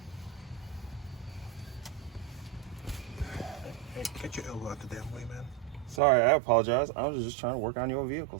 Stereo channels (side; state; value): left; drops out; at 6.0 s